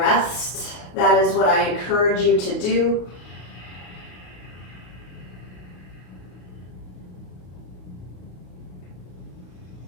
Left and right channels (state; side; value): late; right; 33 ms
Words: that is what I encourage you to do.